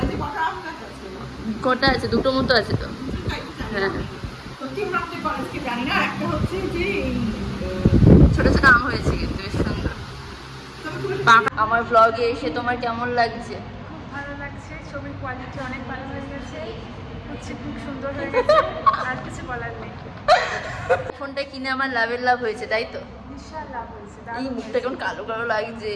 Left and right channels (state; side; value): identical; both; correlation 1.00